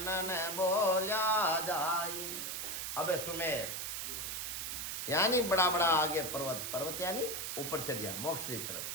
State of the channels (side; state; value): right; noise; hiss, 4 dB below the sound